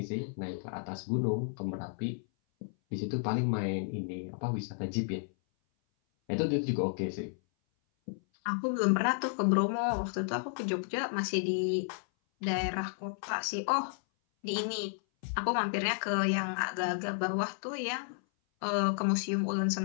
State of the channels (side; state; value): right; silent; 56 dB below the other